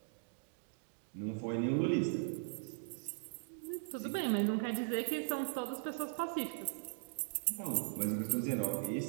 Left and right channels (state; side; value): silent; left; digital silence